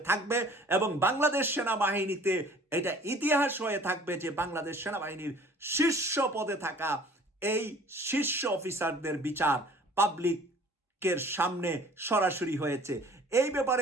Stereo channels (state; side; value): normal; both; correlation 0.50